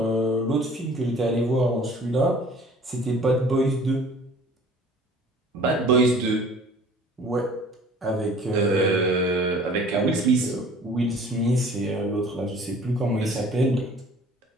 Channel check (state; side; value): normal; both; correlation 0.49